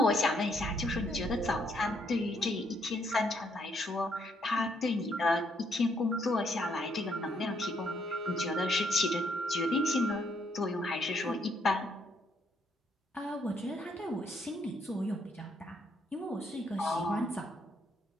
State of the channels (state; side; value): normal; both; correlation 0.72